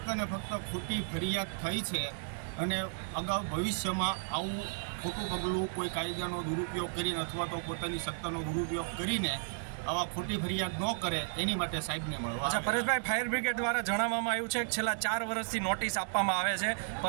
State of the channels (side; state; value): left; silent; digital silence